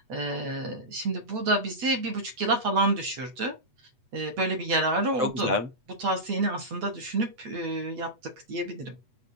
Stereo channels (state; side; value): late; left; 8.2 ms